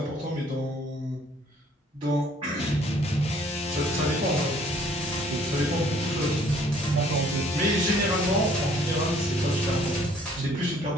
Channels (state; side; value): normal; both; correlation 0.59